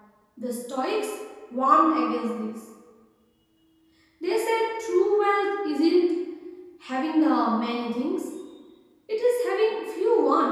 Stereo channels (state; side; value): identical; both; correlation 1.00